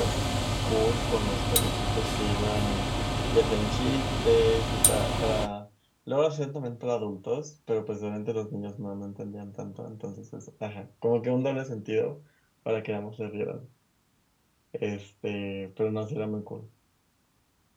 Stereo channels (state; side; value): identical; both; correlation 1.00